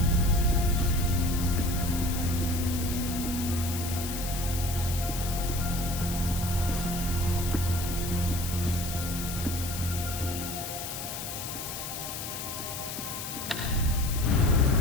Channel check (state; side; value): noise; left; hiss, 7 dB below the sound